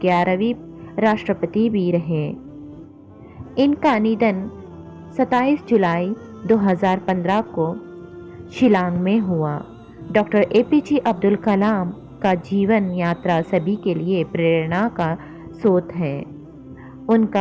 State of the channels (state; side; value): identical; both; correlation 1.00